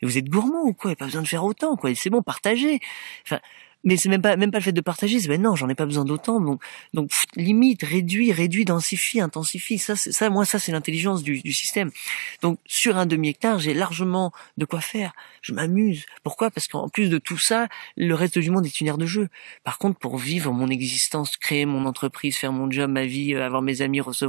mais vous êtes gourmand ou quoi? Il n'y a pas besoin de faire autant, quoi. C'est bon, partagez. Enfin, mais c'est même pas le fait de partager. C'est, non, j'en ai pas besoin d'autant. Donc, limite, réduit, densifie, intensifie. Ça, c'est l'intelligence du système. Donc, sur un demi-hectare, j'ai largement de quoi faire. Je m'amuse. Pourquoi? Parce qu'en plus de tout ça, le reste du monde est une aire de jeu. Par contre, pour vivre mon existence, créer mon entreprise, faire mon job, ma vie, avoir mes amis,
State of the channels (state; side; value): silent; left; digital silence